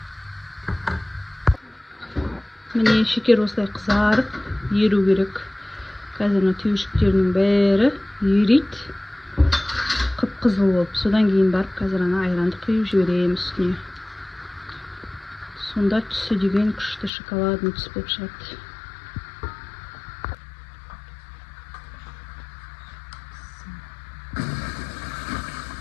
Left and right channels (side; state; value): right; drops out; at 17.1 s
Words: Міне шекер осылай қызарып, еру керек. Қазір түйіршіктерінің бәрі ерейді. Қып-қызыл болып. Содан кейін барып, қазір ана айранды құйып жіберемін үстіне. Сонда түсі деген күшті шоколадный түс болып шығады.